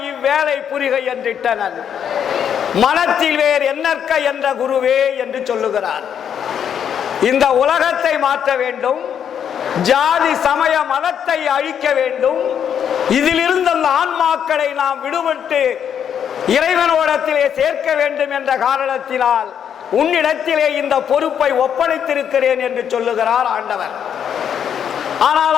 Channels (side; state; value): right; quieter; 8.5 dB